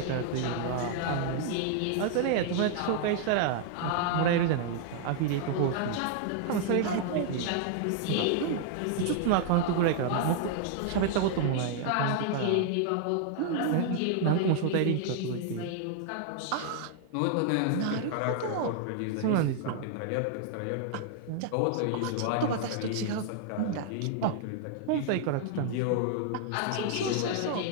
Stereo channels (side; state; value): both; different; correlation 0.00